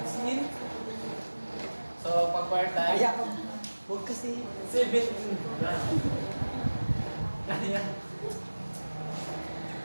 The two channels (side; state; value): both; inverted; correlation -1.00